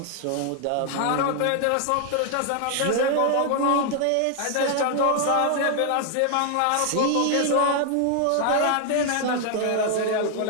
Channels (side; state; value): both; different; correlation 0.00